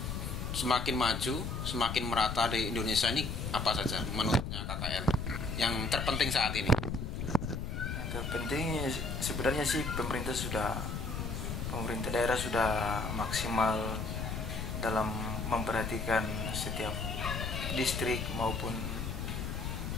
semakin maju, semakin merata di Indonesia ini apa saja menurutnya KKL yang terpenting saat ini? Yang terpenting sebenarnya sih pemerintah daerah sudah maksimal dalam memperhatikan setiap distrik maupun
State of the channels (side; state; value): left; noise; rumble, 3 dB below the sound